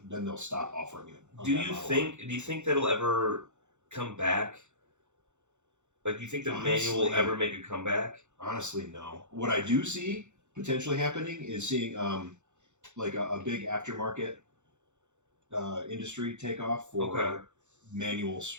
then they'll stop offering it. on Do that you model. think that'll ever come back? Like, do you think the manual will Honestly- ever make a comeback? Honestly, no. What I do see potentially happening is seeing like a big aftermarket industry take off for Okay. manual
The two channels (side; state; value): left; late; 0.84 ms